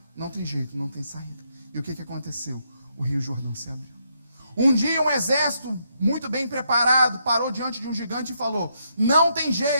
não tem jeito, não tem saída. E o que aconteceu? O Rio Jordão se abriu. Um dia um exército muito bem preparado parou diante de um gigante e falou, não tem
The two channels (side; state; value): both; inverted; correlation -0.77